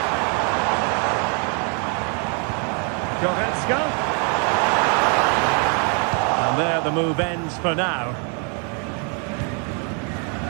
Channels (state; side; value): quieter; left; 38.5 dB